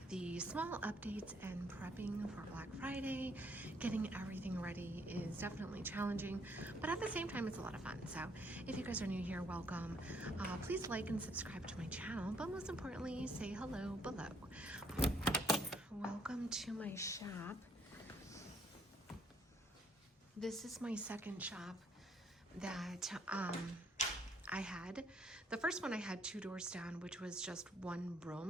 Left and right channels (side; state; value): both; normal; correlation 0.67